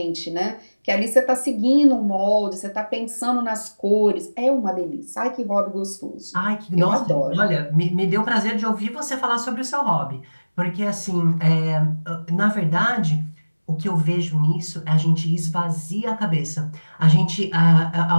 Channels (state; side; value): inverted; both; correlation -1.00